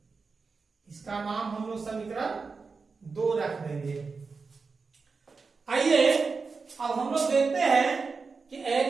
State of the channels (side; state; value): left; quieter; 4.7 dB